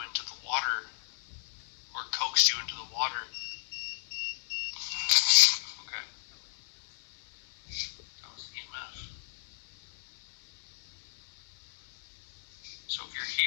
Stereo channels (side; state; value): right; silent; 56 dB below the other